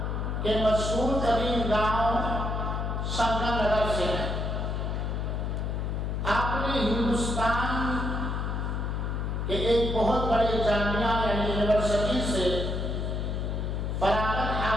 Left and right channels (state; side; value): noise; left; hum, 1 dB below the sound